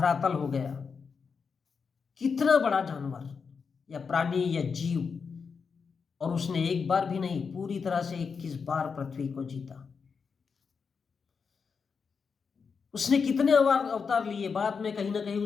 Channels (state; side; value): quieter; right; 5.6 dB